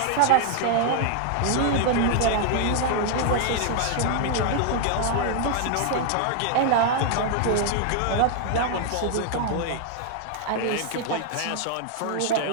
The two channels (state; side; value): different; both; correlation 0.00